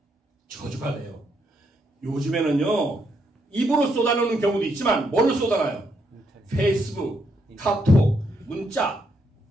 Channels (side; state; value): both; normal; correlation 0.76